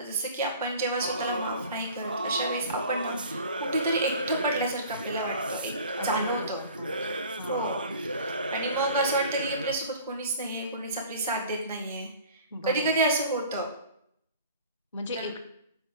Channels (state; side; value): inverted; both; correlation -0.44